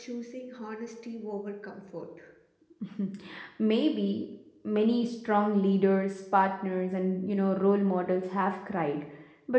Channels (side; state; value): both; identical; correlation 1.00